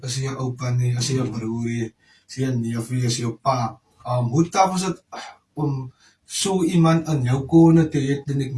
je opa, as je broer, as je neef, as je pa. Hoe tough was het om zo iemand aan jou kone te hebben, en ik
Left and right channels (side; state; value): both; identical; correlation 1.00